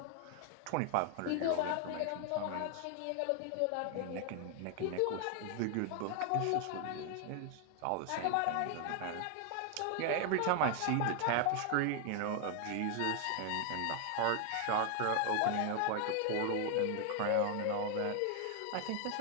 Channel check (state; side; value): different; both; correlation 0.00